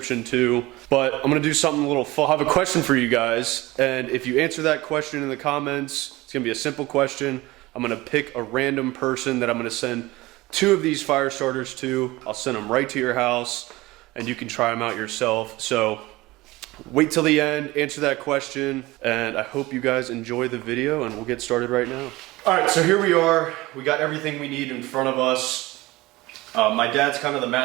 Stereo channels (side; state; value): left; quieter; 19.9 dB